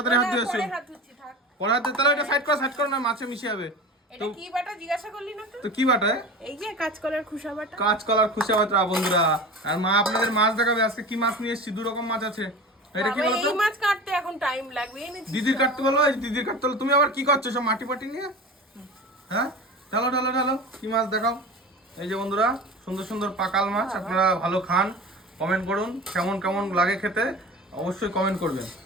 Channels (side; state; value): both; normal; correlation 0.34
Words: হাত ধুয়ে আসো পরে হাত ধুচ্ছি থাক। পরে হাত তাহলে এটা সাইড করো না মাছে মিশে যাবে এটা কি বাটা জিজ্ঞাসা করলি না তো কি বাটা এই যে কাঁচকলার খুশা বাটা। কাঁচকলার খুশা বাটা বন্ধুরা আর মা আপনাদের মাছ দেখাবে আজকে কি মাছ নিয়ে এসেছি দু রকম মাছ আছে এটা কি বলতো এই মাছ কাটতে এখন টাইম লাগবে দিদির কাটতে বলো এই দিদির কাটতে বলো তুমি আবার কি করছো সব মাটি পাটি নিয়ে হ্যাঁ ঢালো কি মাছ দেখাও এই যে বন্ধুরা সুন্দর সুন্দর পাকাল মাছ আপনারা ভালো খান কমেন্ট করুন কেমন কেমন লাগে খেতে অবশ্যই কমেন্ট করবেন